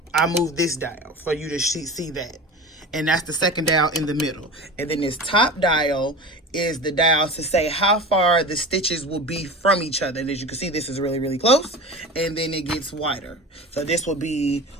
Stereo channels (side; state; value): both; normal; correlation 0.32